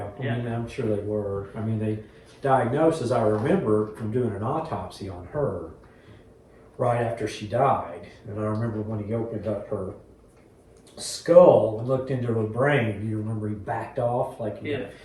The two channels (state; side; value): identical; both; correlation 1.00